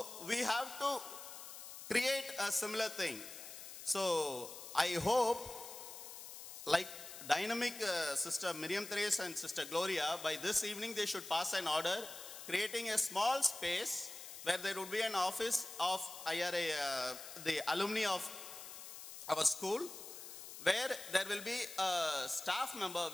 we have to create a similar thing. So I hope, like dynamic Sister Miriam Therese and Sister Gloria, by this evening they should pass an order creating a small space where there would be an office of IRA, the alumni of our school, where there will be a staff member,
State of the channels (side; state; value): left; noise; hiss, 12 dB below the sound